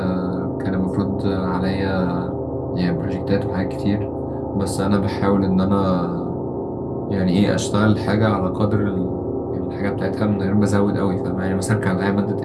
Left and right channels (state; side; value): identical; both; correlation 1.00